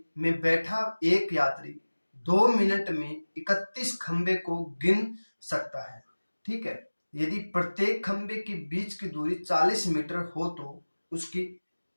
में बैठा एक यात्री 2 मिनट में 31 खंबे को गिन सकता है। ठीक है, यदि प्रत्येक खंबे के बीच की दूरी 40 मीटर हो तो उसकी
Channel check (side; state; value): both; inverted; correlation -1.00